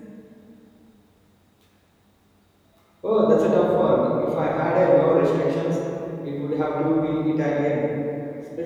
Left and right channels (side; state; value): both; identical; correlation 1.00